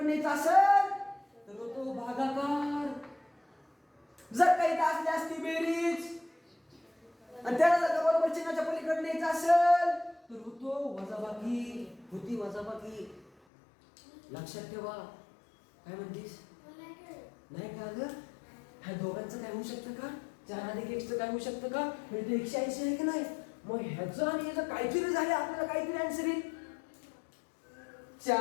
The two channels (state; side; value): drops out; right; at 13.3 s